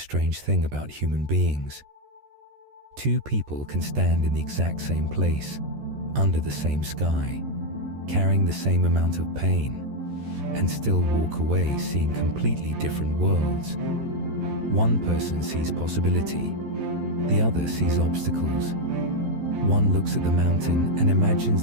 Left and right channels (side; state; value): left; late; 14 ms